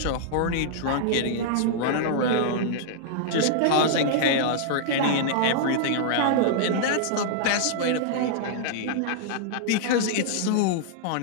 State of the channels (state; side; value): different; both; correlation -0.01